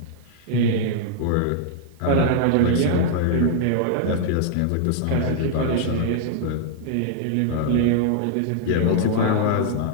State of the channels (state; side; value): different; both; correlation -0.01